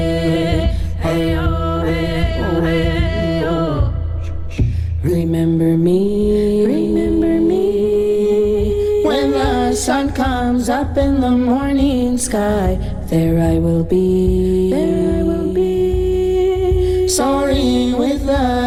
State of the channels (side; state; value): both; identical; correlation 1.00